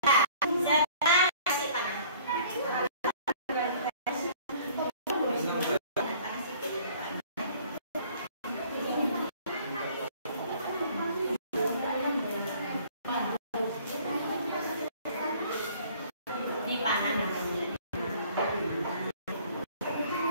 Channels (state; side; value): inverted; both; correlation -0.54